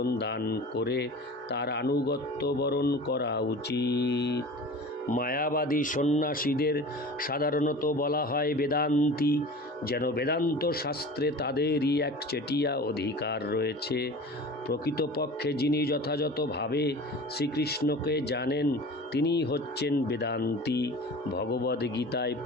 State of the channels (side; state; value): both; normal; correlation 0.38